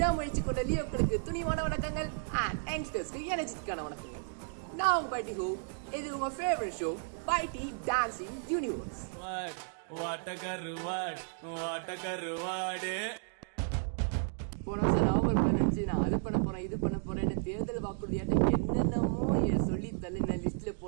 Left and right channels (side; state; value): left; silent; digital silence